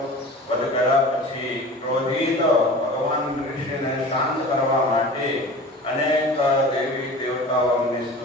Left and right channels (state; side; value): normal; both; correlation 0.38